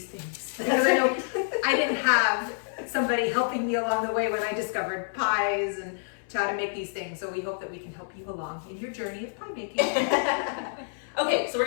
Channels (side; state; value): right; silent; 59 dB below the other